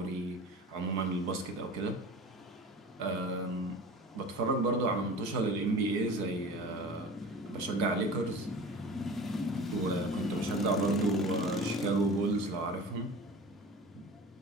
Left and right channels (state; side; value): normal; both; correlation 0.38